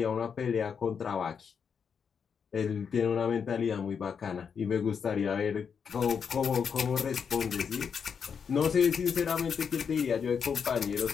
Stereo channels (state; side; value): quieter; right; 6.7 dB